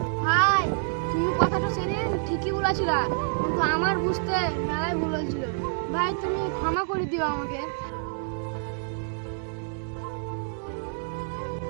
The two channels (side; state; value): left; silent; digital silence